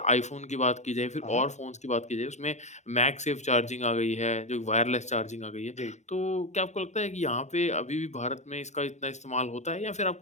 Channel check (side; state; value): right; late; 0.34 ms